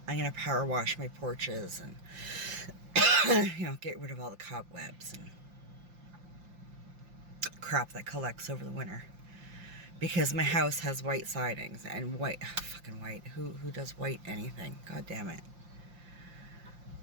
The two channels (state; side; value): late; left; 5.7 ms